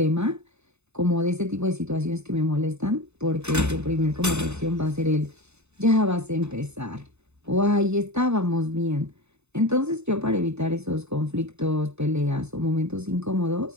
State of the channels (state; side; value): late; left; 0.81 ms